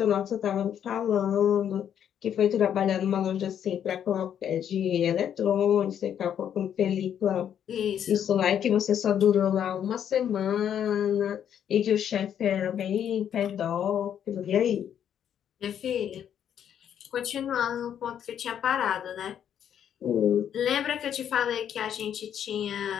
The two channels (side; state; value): right; quieter; 9.3 dB